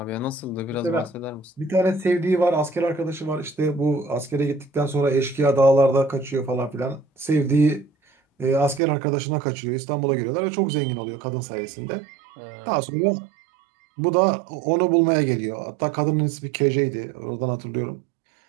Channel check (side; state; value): left; drops out; at 8.8 s